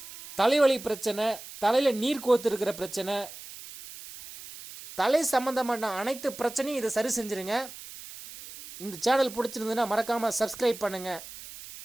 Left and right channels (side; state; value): right; noise; hiss, 14 dB below the sound